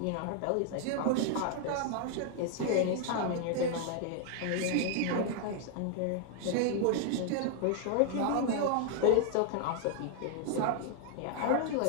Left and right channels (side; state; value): both; different; correlation 0.00